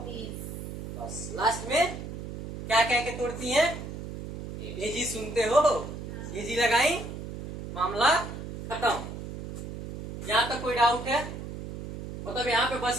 बस लास्ट में क्या कह के तोड़ती हैं? एजी सुनते हो? एजी लगाई, मामला खत्म। यहाँ तक कोई डाउट है? मतलब यहाँ पे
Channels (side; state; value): right; noise; hum, 9 dB below the sound